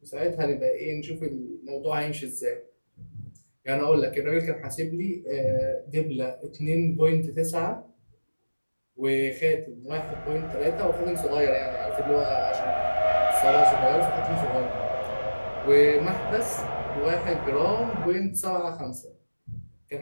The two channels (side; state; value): both; inverted; correlation -1.00